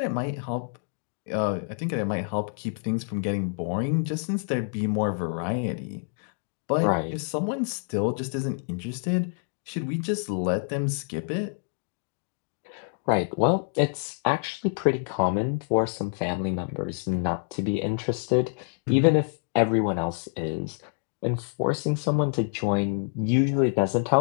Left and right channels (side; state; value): right; silent; 57 dB below the other